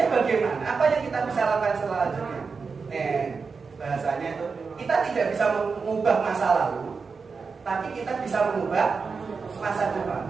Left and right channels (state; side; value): quieter; left; 5.0 dB